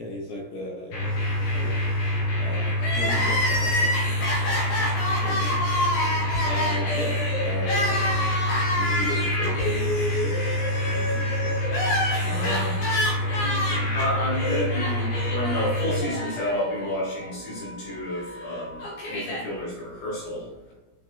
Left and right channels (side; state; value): right; late; 17 ms